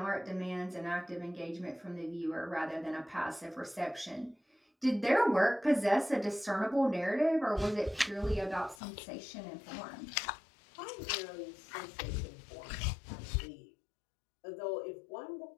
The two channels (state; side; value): drops out; right; at 8.8 s